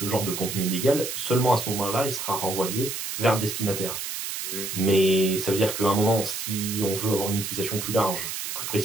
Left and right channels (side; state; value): right; noise; hiss, 5 dB below the sound